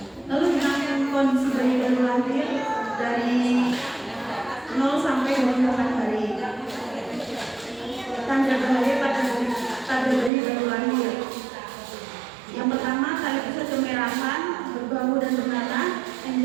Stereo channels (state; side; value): drops out; left; at 10.3 s